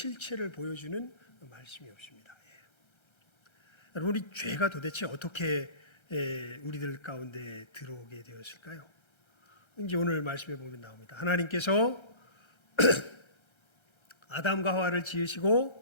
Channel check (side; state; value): right; late; 1.3 ms